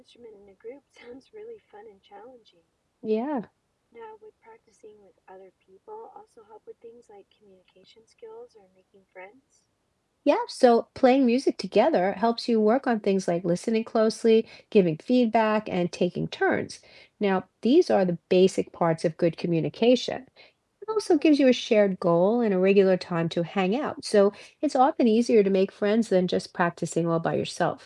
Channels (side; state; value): both; identical; correlation 1.00